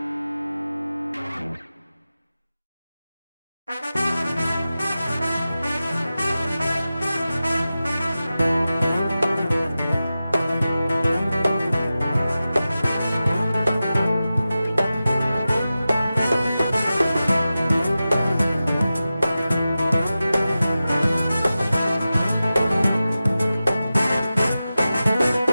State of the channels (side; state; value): both; inverted; correlation -0.94